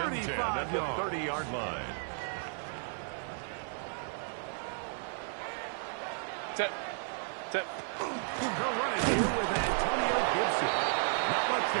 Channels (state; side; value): silent; left; 55 dB below the other